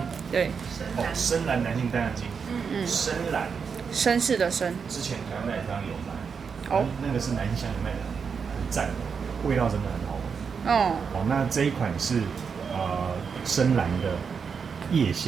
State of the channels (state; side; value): quieter; left; 6.0 dB